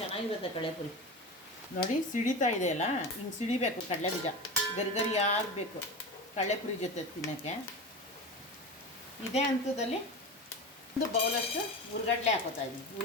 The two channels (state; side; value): normal; both; correlation 0.26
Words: ಚೆನ್ನಾಗಿರುತ್ತೆ ಕಡಲೆಪುರಿ. ನೋಡಿ ಸಿಡಿತಾ ಇದೆಯಲ್ಲ, ಹಿಂಗೆ ಸಿಡಿಬೇಕು ಕಡಲೆ ಬೀಜ. ಗರಿ ಆಗಬೇಕು ಕಡಲೆಪುರಿ ಜೊತೆ ತಿನ್ನೋಕ್ಕೆ. ಇದೇ ಹಂತದಲ್ಲಿ ಒಂದು ಬೌಲಷ್ಟು ಹುರ್ಗಡ್ಲೆ ಹಾಕೋತಾ ಇದ್ದೀನಿ.